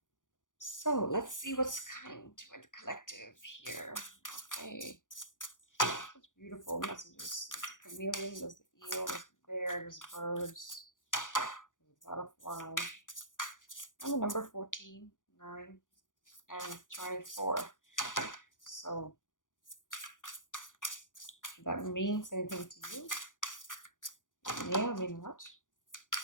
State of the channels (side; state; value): right; late; 0.88 ms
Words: So let's see what's coming to the collective here. Okay, such beautiful messages. There's the chameleon, there's the eel, there's the bear, there's birds, there's a butterfly, and the number 14, 9, and 24. So if that means anything to you, it may or may not.